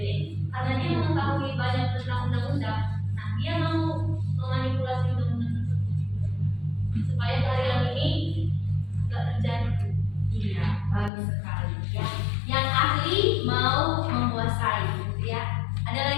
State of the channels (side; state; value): right; drops out; at 11.1 s